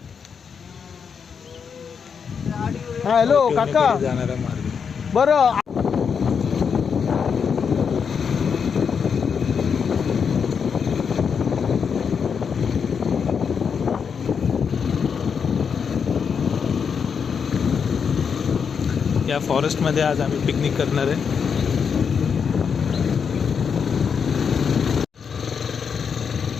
हॅलो काका, जाणारा मार्ग बरं। या फॉरेस्टमध्ये आज आम्ही पिकनिक करणार आहे।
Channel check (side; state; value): right; quieter; 6.5 dB